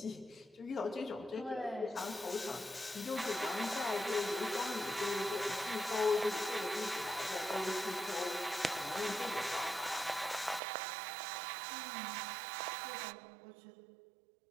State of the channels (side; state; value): left; drops out; at 10.6 s